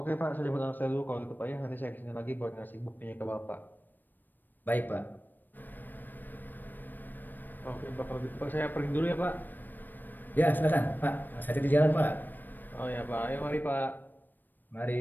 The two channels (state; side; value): late; right; 0.091 ms